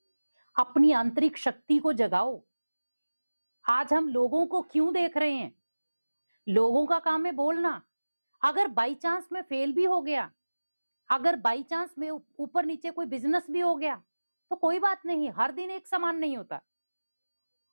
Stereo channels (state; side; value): inverted; both; correlation -1.00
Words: अपनी आंतरिक शक्ति को जगाओ। आज हम लोगों को क्यों देख रहे हैं? लोगों का काम है बोलना। अगर बाई चांस में फेल भी हो गया, अगर बाई चांस में ऊपर नीचे कोई बिजनेस भी हो गया तो कोई बात नहीं, हर दिन एक समान नहीं होता।